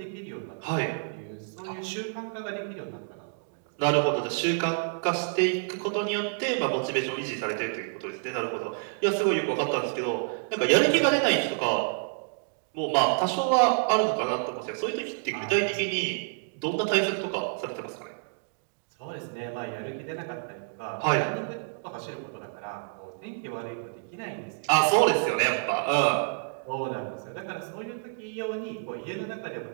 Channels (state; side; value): silent; left; digital silence